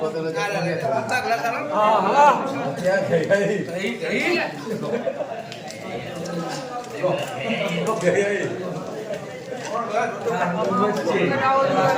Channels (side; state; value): both; identical; correlation 1.00